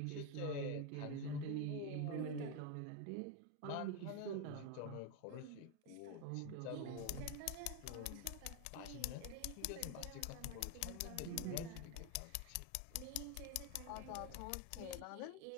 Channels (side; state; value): both; different; correlation 0.01